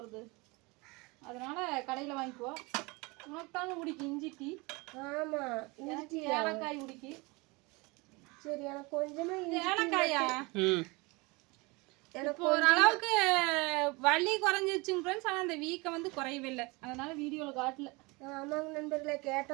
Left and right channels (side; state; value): left; quieter; 25.9 dB